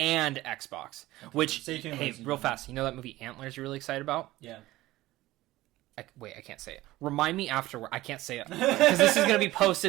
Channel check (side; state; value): left; quieter; 17.3 dB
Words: Xbox. Which Stay tuned, hey, ladies and real gentlemen. fast, you know that movie Antlers you're really excited about? Yeah. Wait, I can't say it. Remind me afterward. I can't say it because this is going to be